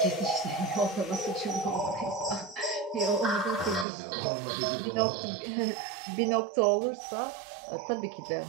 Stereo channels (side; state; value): left; drops out; at 3.9 s